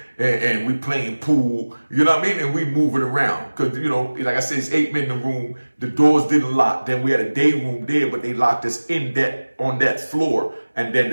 And we playing pool, you know what I mean? And we moving around. Because, you know, like I said, it's 8 men in the room. The doors didn't lock. Then we had a day room there, but they locked us in on that floor. And then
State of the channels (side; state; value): both; inverted; correlation -1.00